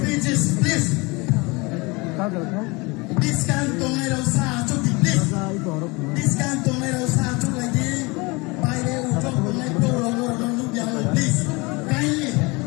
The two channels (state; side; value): quieter; right; 25.8 dB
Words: please. This can tongai rasa achok di please. This can tongai rasa achok lagi. Baile uchok tongai pro rogo rogo yang please. Kindly